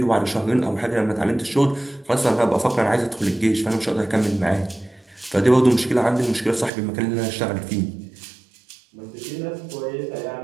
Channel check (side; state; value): left; drops out; at 6.7 s